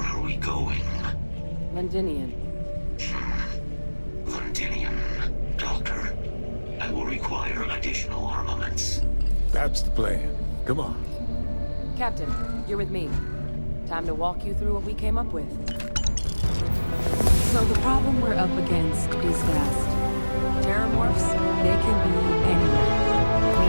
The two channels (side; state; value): both; inverted; correlation -1.00